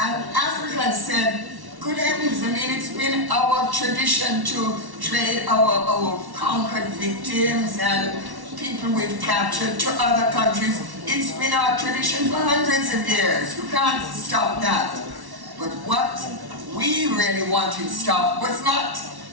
Africans said, good heavens, I mean, it's been our tradition to trade our conquered victims and people we've captured to other countries. It's been our tradition for hundreds of years. You can't stop that. But what we really wanted stopped was not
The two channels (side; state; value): left; late; 1.1 ms